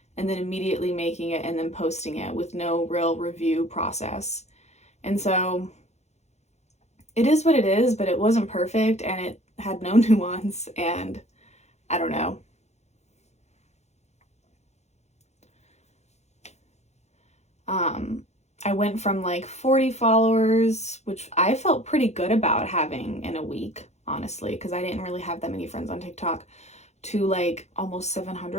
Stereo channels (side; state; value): right; late; 0.32 ms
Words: and then immediately making it and then posting it with no real review process. And so it is what it is, but it wasn't perfect, and it had no nuance, and I don't know. I went from 40 followers, which I felt pretty good about having in a week, honestly, because I didn't really have that many friends on TikTok, to almost